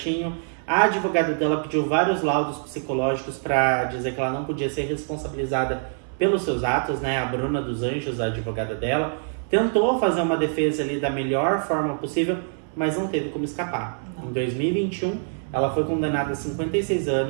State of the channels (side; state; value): left; silent; 62 dB below the other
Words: A advogada dela pediu vários laudos psicológicos pra dizer que ela não podia ser responsabilizada pelos seus atos, né? A Bruna dos Anjos, a advogada dela, tentou fazer uma defesa ali da melhor forma possível, mas não teve como escapar. Não. Em 2021, ela foi condenada a 56